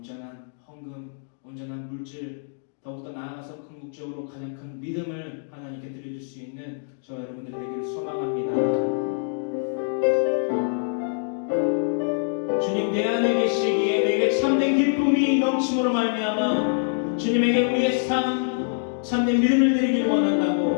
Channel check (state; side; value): silent; right; digital silence